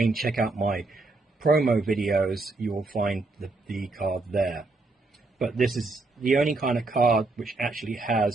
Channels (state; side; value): quieter; left; 3.4 dB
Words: check out my promo videos, you will find the card there. But this is the only kind of card which actually